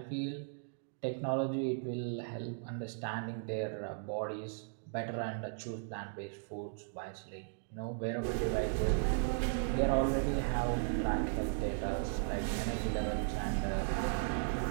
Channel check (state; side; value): silent; left; digital silence